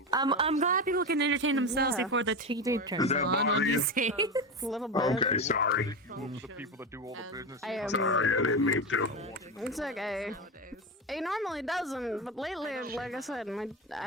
I'm glad people can entertain themselves Yeah. before the TV turns that on bother you? these days. A little bit. Sorry. The people that do all the business. I am. I didn't mean to. It's okay. It normally doesn't, but lately, like I said,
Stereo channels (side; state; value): both; normal; correlation 0.18